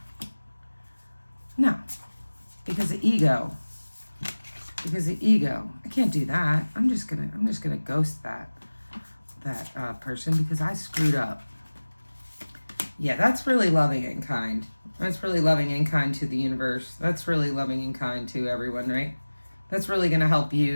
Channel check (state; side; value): inverted; both; correlation -1.00